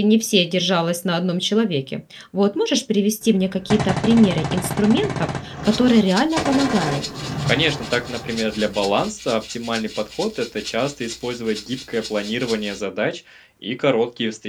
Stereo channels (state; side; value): identical; both; correlation 1.00